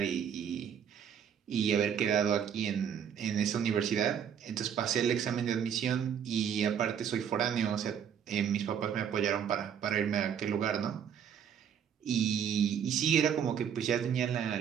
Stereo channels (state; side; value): quieter; left; 8.3 dB